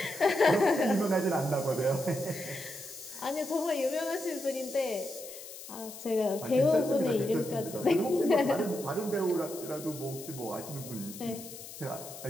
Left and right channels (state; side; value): noise; left; hiss, 13 dB below the sound